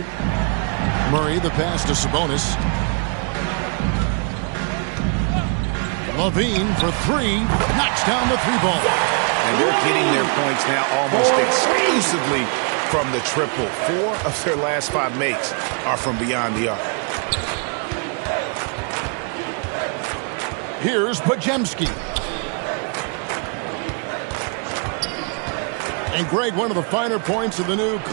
Murray, the pass to Sabonis. Levine for three. Knocks down the three ball. And they're getting their points now almost exclusively from the triple. 4 of their last 5 makes are from beyond the arc. Here's Podziemski. And Greg, one of the finer points of the new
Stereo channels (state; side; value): quieter; left; 39.3 dB